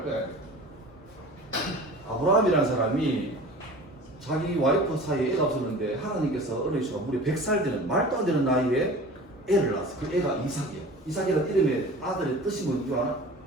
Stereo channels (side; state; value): both; normal; correlation 0.39